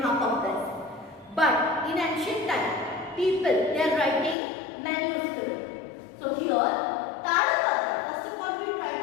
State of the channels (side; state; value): right; drops out; at 4.4 s